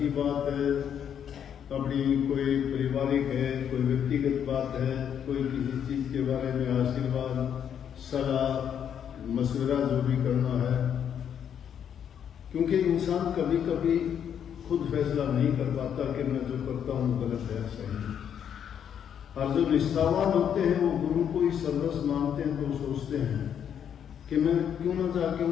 बात है, अपनी कोई पारिवारिक है, कोई व्यक्तिगत बात है, कोई किसी चीज के बारे में आशीर्वाद, सलाह, मशवरा जो भी करना है, क्योंकि इंसान कभी कभी खुद फैसला नहीं कर पाता कि मैं जो करता हूँ गलत है सही है। और जो निष्ठावान होते हैं वो गुरु को ही सर्वस्व मानते हैं, तो सोचते हैं कि मैं क्यों ना जाके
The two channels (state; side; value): quieter; right; 8.7 dB